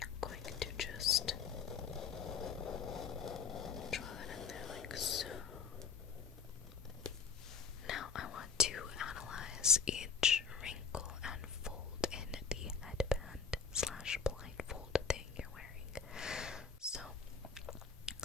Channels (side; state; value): right; quieter; 6.1 dB